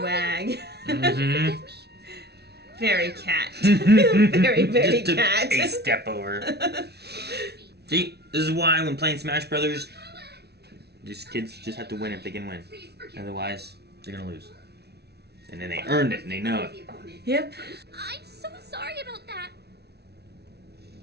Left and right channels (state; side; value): late; left; 0.48 ms